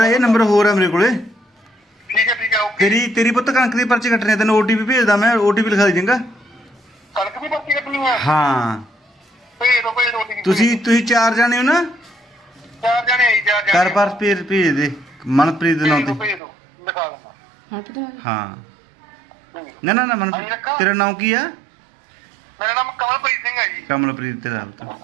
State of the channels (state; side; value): drops out; left; at 16.4 s